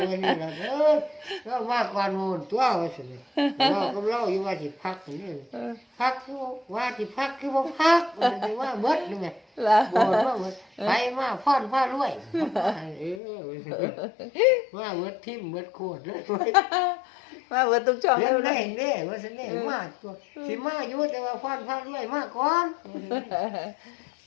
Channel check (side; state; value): right; drops out; at 13.2 s